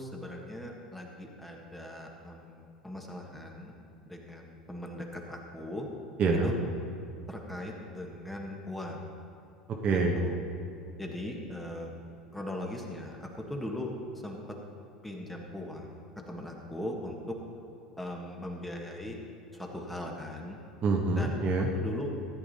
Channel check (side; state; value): both; normal; correlation 0.53